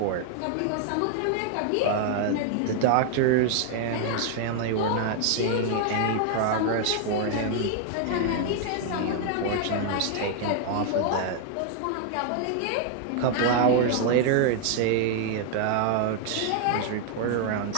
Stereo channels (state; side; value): different; both; correlation 0.00